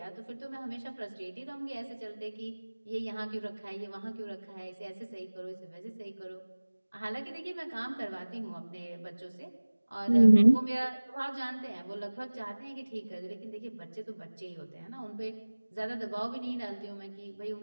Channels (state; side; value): inverted; both; correlation -1.00